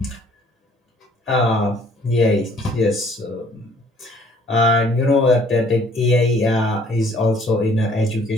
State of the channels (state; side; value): normal; both; correlation 0.59